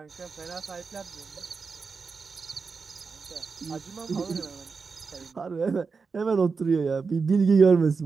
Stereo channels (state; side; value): quieter; left; 4.9 dB